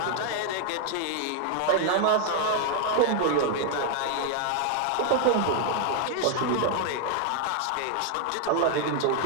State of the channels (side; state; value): both; different; correlation 0.00